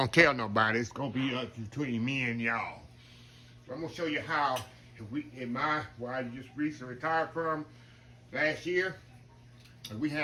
tell nobody. It's going to be between me and y'all. So I'm going to show you how, where I just recently retired from last year, we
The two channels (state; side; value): identical; both; correlation 1.00